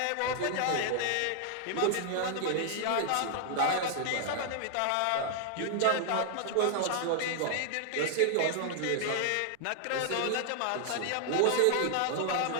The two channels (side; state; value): both; different; correlation 0.00